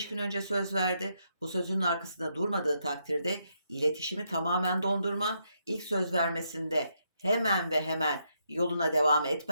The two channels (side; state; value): both; inverted; correlation -0.78